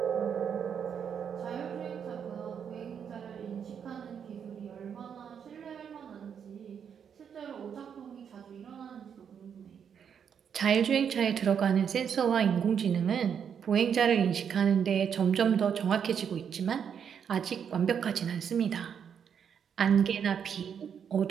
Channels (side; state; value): left; quieter; 7.7 dB